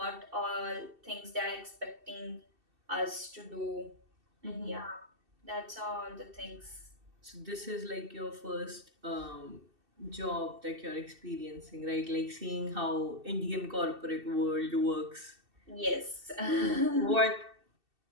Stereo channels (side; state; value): left; late; 2.7 ms